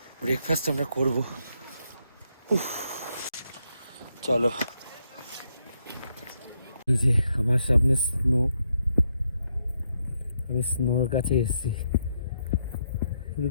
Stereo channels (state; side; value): inverted; both; correlation -0.78